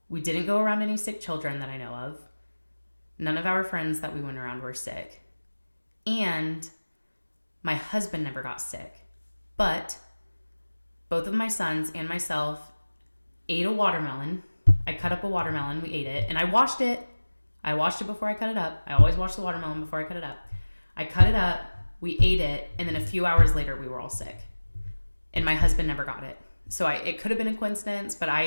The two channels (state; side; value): inverted; both; correlation -1.00